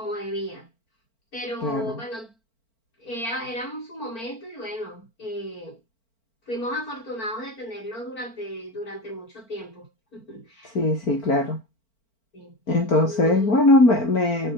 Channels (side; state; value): right; late; 4.4 ms